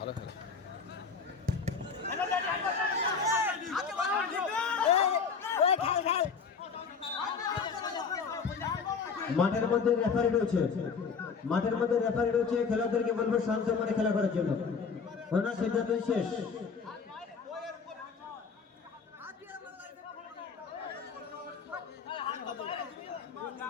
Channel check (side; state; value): right; quieter; 5.5 dB